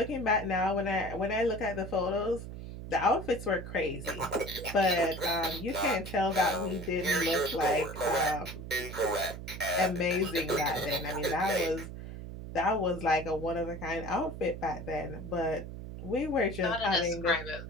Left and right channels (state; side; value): noise; right; hum, 10 dB below the sound